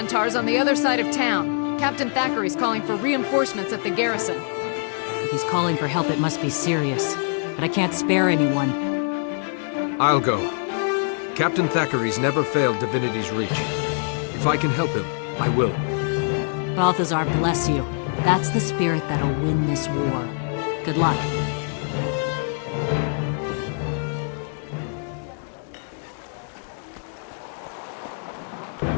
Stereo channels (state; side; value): silent; right; 63 dB below the other